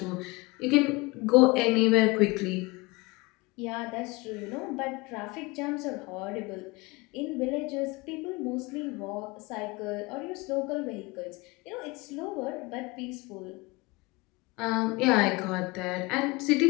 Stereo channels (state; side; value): quieter; right; 24.2 dB